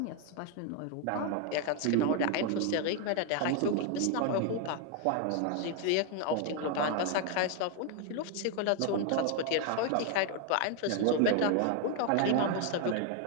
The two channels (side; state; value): both; different; correlation 0.01